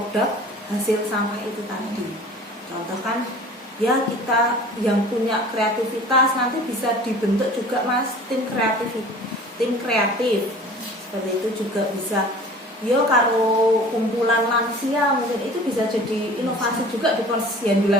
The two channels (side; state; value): both; normal; correlation 0.44